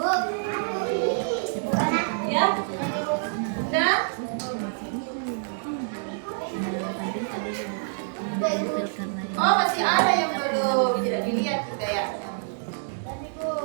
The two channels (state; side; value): silent; left; digital silence